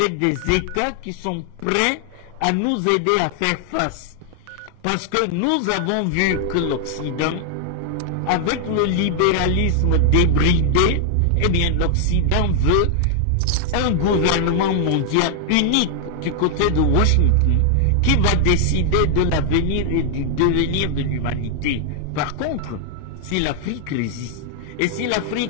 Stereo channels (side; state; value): both; different; correlation 0.00